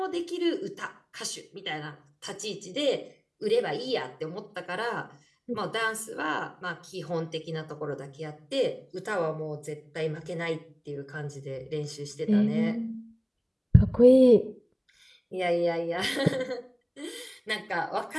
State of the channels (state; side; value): identical; both; correlation 1.00